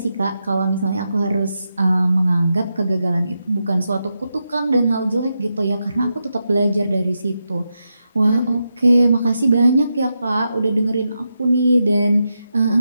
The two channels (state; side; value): inverted; both; correlation -0.87